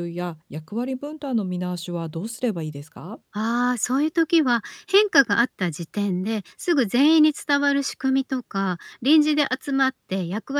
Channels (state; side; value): identical; both; correlation 1.00